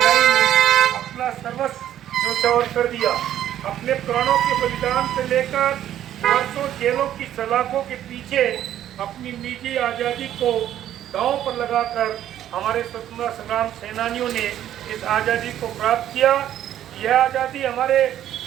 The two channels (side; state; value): left; quieter; 11.5 dB